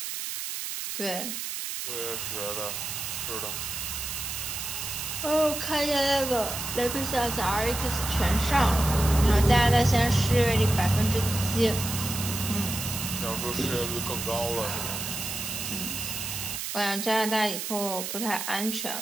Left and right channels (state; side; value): noise; right; hiss, 5 dB below the sound